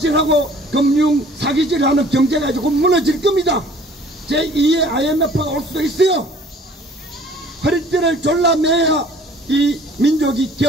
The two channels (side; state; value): both; normal; correlation 0.52